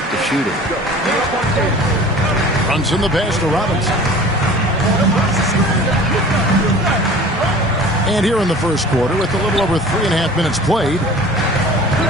to shoot it. Brunson the pass to Robinson. And here in the first quarter, with a little over 3.5 minutes played,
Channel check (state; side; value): normal; both; correlation 0.43